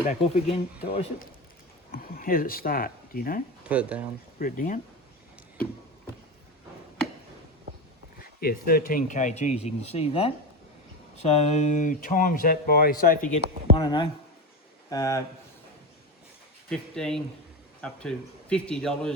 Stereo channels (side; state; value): both; normal; correlation 0.20